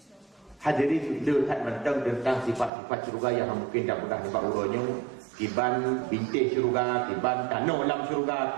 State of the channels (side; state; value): left; drops out; at 2.7 s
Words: Hadirin lihat mentang tentang sifat-sifat syurga yang mungkin tak pernah nampak urutnya. Kiban bintik syurga, kiban tanah dalam